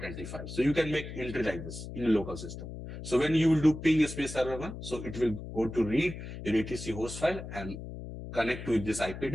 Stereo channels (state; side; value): noise; left; hum, 10 dB below the sound